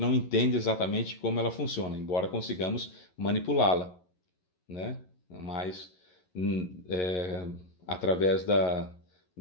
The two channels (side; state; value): right; late; 11 ms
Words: não entende exatamente como ela funciona, embora consigamos manipulá-la, né? Mas através